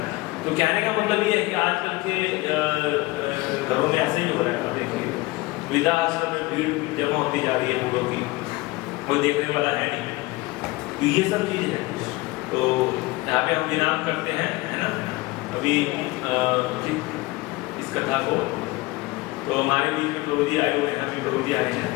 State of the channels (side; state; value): right; quieter; 21.3 dB